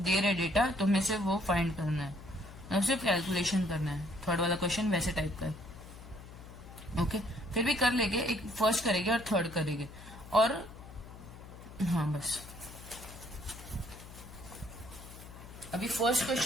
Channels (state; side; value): noise; left; hum, 16 dB below the sound